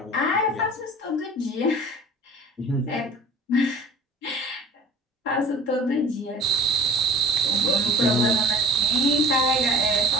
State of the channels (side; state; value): both; normal; correlation 0.43